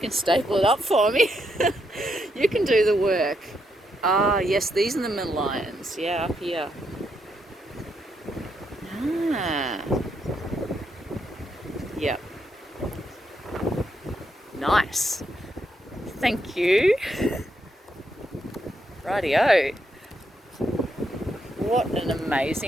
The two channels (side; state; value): both; normal; correlation 0.79